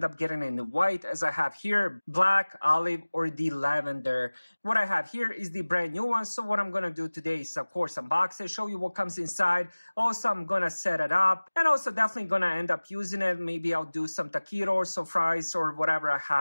up getting it in the white, as I have here, black, olive, or the lavender. What I have here is the brand new one. So what I'm going to do today is, of course, unbox it, show you what comes inside. Also, I'm going to set it up, and also definitely going to end up using it. Maybe I'll do some taquitos or fries or whatever I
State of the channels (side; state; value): both; inverted; correlation -1.00